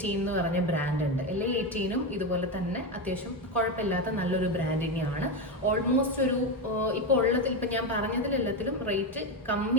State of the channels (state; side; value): normal; both; correlation 0.13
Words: എന്ന് പറഞ്ഞ ബ്രാൻഡ് ഉണ്ട്. LA18ഉം ഇതുപോലെ തന്നെ അത്യാവശ്യം കുഴപ്പമില്ലാത്ത നല്ലൊരു ബ്രാൻഡ് തന്നെയാണ്. ഓൾമോസ്റ്റ് ഒരു ഇപ്പോൾ ഉള്ളതിൽ, ഇപ്പം ഞാൻ പറഞ്ഞതിലെല്ലാത്തിലും റേറ്റ്